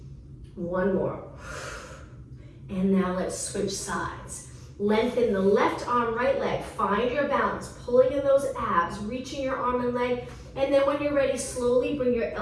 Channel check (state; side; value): identical; both; correlation 1.00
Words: 1 more. And now let's switch sides. Lengthen the left arm, right leg. Find your balance, pulling in those abs, reaching your arm and leg. And then when you're ready, slowly bring your